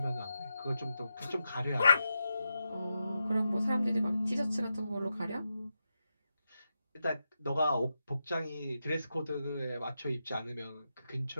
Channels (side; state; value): both; inverted; correlation -0.88